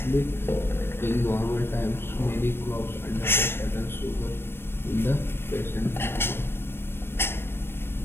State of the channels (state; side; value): late; right; 0.11 ms